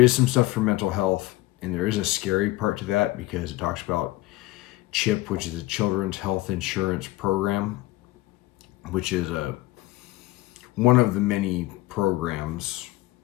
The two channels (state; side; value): quieter; right; 18.5 dB